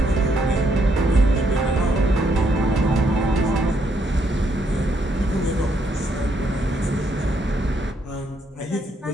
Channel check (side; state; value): both; normal; correlation 0.74